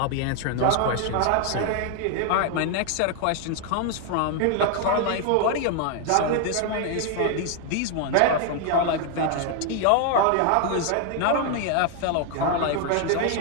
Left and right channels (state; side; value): different; both; correlation 0.00